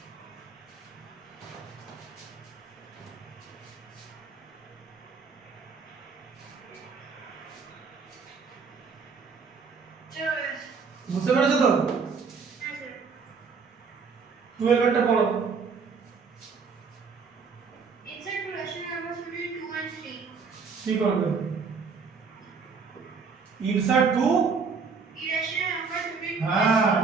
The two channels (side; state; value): left; quieter; 5.3 dB